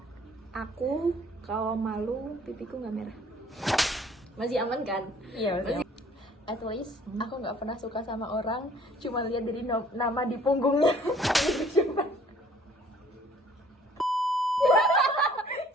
aku kalau malu pipiku nggak merah. Masih aman kan? Iya masih. At least aku nggak pernah suka sama orang, cuma lihat dari nama di punggungnya. Siapa?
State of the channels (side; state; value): both; normal; correlation 0.56